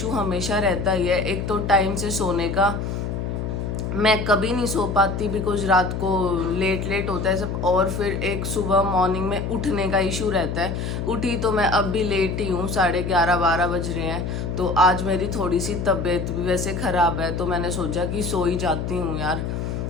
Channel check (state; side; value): noise; left; hum, 3 dB below the sound